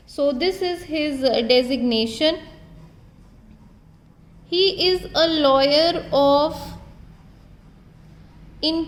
So this is his designation. He is a lawyer of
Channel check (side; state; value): both; identical; correlation 1.00